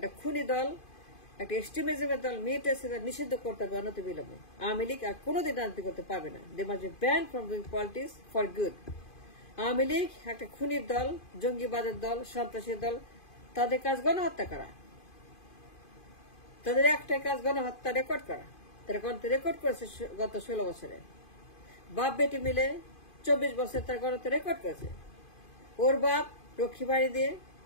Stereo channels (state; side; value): late; right; 2.5 ms